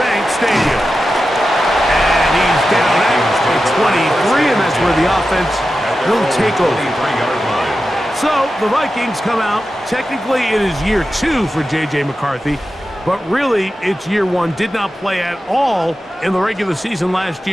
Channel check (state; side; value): normal; both; correlation 0.92